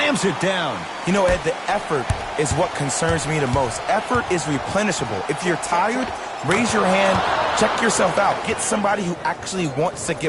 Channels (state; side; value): identical; both; correlation 1.00